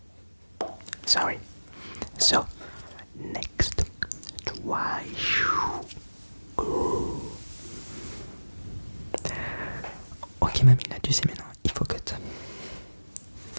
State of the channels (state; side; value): inverted; both; correlation -1.00